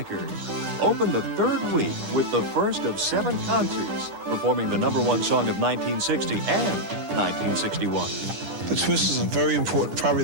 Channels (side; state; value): left; late; 10 ms